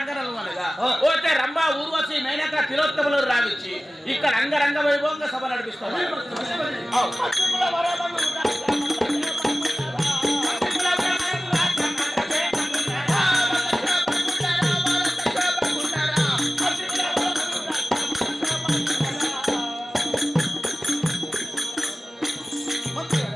అనగా పోతే రంభా ఊర్వశి మేనక తిలోత్తములు రావిచ్చి ఇక్కడ అంగరంగ వైభవంగా సభ నడిపిస్తారు.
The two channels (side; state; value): both; normal; correlation 0.96